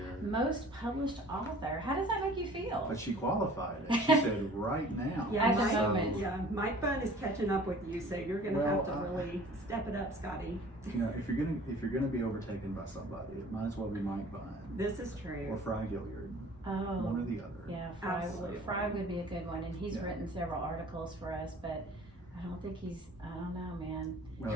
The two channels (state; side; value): normal; both; correlation 0.48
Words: Most published author. How does that make you feel? But she qualified it. She said right now. Yeah, At the Mike, moment. yeah, Mike Bunn is catching up with you, so you're gonna Well, have to really step it up, Scotty. You know, if you're gonna be overtaken by somebody, it might as well be Mike Bunn This is or true. Fry Gilliard, one Oh, or the other. yeah, Absolutely. Fry would be a good one, and he's Yeah. written several articles for us, but I don't think I don't know, man.